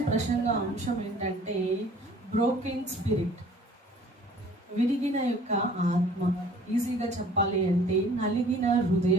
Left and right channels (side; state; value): both; normal; correlation 0.52